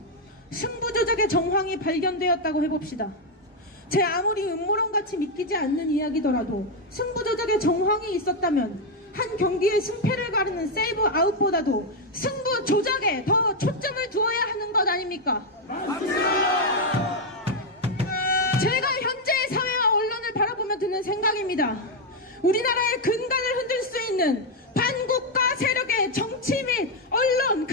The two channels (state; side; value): normal; both; correlation 0.02